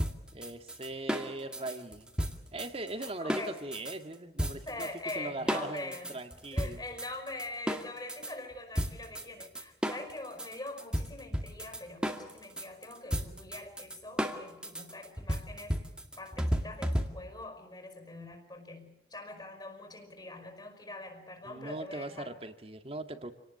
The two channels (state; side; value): normal; both; correlation 0.67